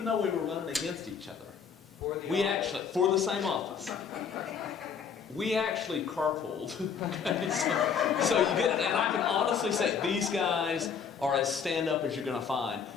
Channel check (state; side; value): quieter; right; 6.7 dB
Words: though we were running against each other, for the same office, we actually carpooled. so you get it, and I can honestly say these guys are as stand-up as you're going to find,